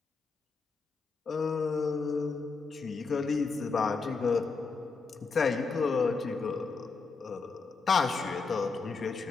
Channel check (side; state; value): right; quieter; 4.5 dB